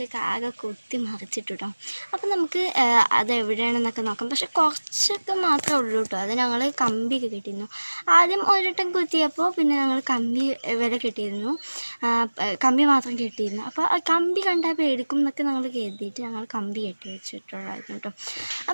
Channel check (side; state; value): both; inverted; correlation -1.00